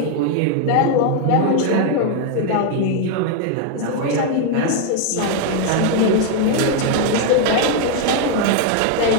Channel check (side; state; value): both; different; correlation 0.00